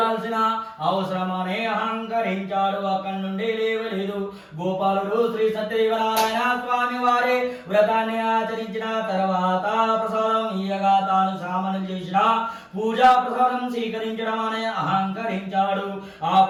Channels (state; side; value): identical; both; correlation 1.00